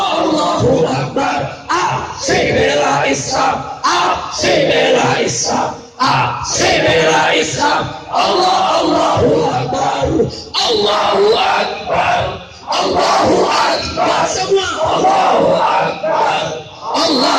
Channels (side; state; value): both; identical; correlation 1.00